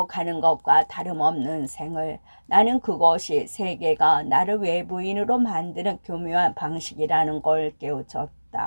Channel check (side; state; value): both; inverted; correlation -1.00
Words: 가는 것과 다름없는 생을. 나는 그것이 세계가 나를 외부인으로 만드는 교묘한 방식이라는 걸